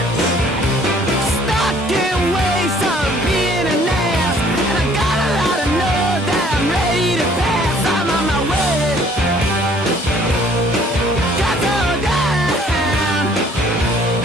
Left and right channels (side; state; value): both; normal; correlation 0.58